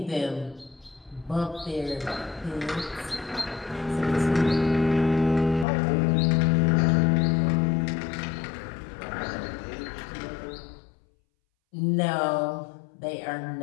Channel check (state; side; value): drops out; right; at 5.7 s